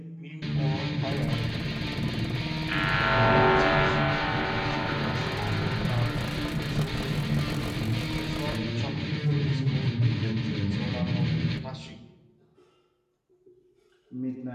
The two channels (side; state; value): both; identical; correlation 1.00